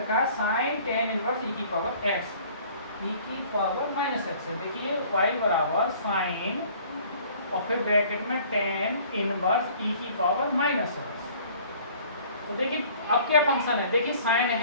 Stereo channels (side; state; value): both; inverted; correlation -0.53